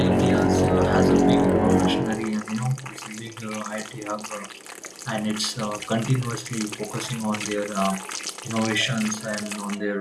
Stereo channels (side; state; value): both; identical; correlation 1.00